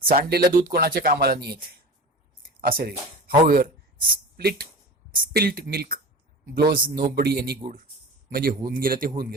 सांडलेलं दूध कोणाच्या कामाला नाही येत असं रे. However spilt milk blows nobody any good म्हणजे होऊन गेलं ते होऊन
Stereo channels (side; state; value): both; normal; correlation 0.34